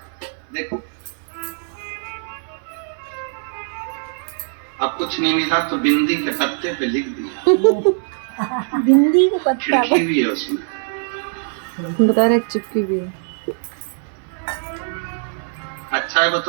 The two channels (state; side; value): silent; left; 60 dB below the other